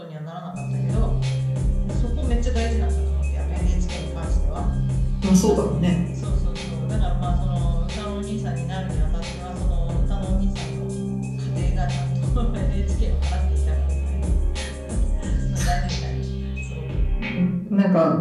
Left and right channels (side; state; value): both; identical; correlation 1.00